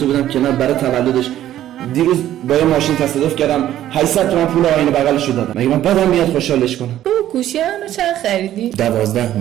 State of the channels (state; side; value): quieter; left; 12.6 dB